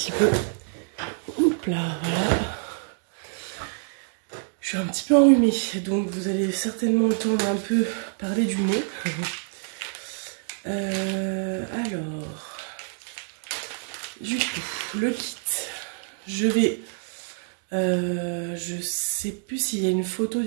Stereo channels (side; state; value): left; silent; digital silence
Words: peu. Hop là, voilà. Je suis un petit peu enrhumée, donc vous allez certainement entendre un peu parler du nez. Alors, du coup, le kit, je sais plus s'il y a une photo